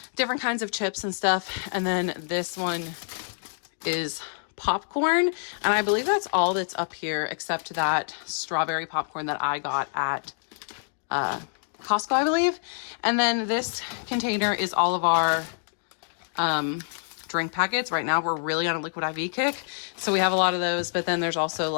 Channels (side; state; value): right; silent; digital silence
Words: different kinds of chips and stuff. And then this one is popcorn, and I believe that's all that's up here except that strawberry popcorn that I got at Costco, I believe. And then this container is all of our drink packets. Right now we're really on a liquid IV kick, so we have a lot of those, but then there's also